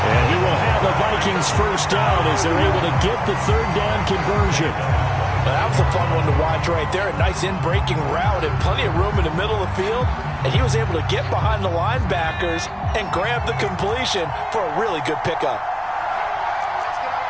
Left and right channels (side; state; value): both; identical; correlation 1.00